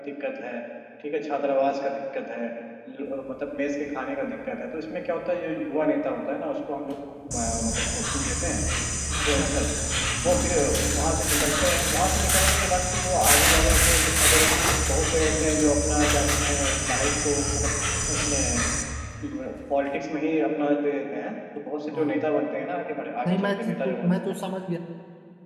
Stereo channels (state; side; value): identical; both; correlation 1.00